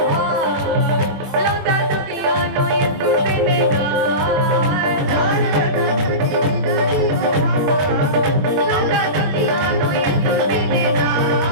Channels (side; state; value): left; late; 21 ms